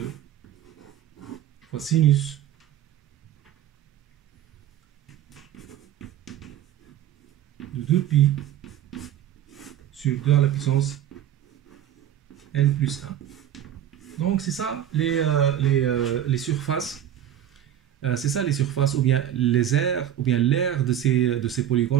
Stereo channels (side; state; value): left; quieter; 11.0 dB